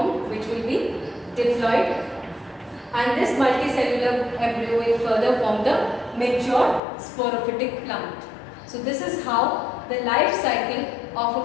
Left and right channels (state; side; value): drops out; right; at 6.8 s